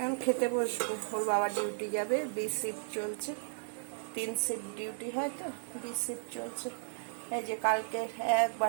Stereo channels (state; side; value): silent; left; 55 dB below the other